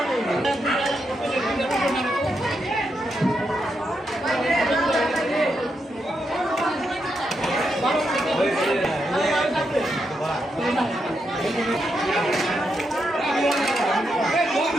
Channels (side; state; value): both; normal; correlation 0.83